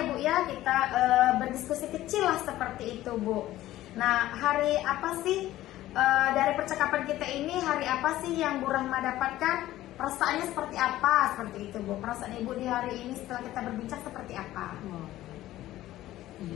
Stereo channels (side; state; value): right; quieter; 14.9 dB